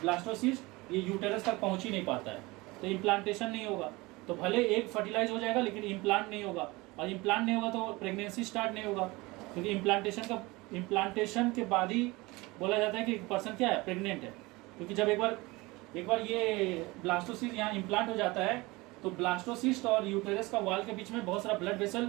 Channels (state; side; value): quieter; left; 22.6 dB